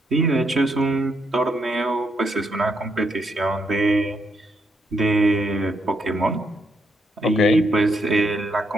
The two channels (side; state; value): both; normal; correlation 0.77